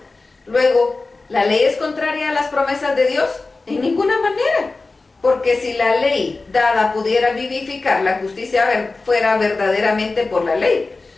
Luego, ¿la ley es contraria a las promesas de Dios? En ninguna manera, porque si la ley dada pudiera vivificar, la justicia fuera verdaderamente por la ley.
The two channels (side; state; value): right; quieter; 3.6 dB